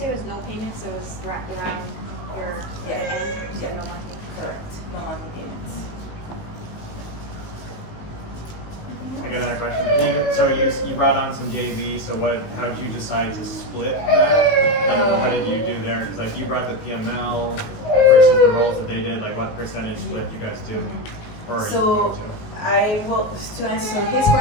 it was no payment, so it was wrapped around your Yeah. hand? So Yeah. no monthly? Correct, no monthly payments. I got another question. So you brought on some JV, so how did you decide to split that? Like, what did you do there? Because like you brought the PML versus the roles that they did, like what percentage split you guys do? Or So you do? I will, to answer his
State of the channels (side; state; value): right; late; 19 ms